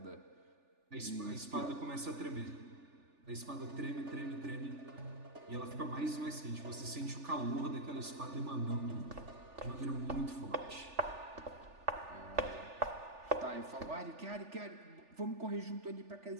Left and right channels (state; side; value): late; left; 3.4 ms